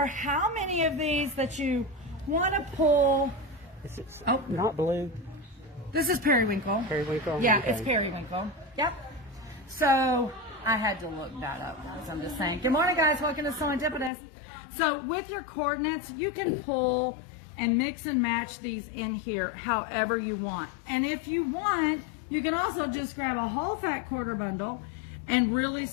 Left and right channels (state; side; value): drops out; right; at 14.1 s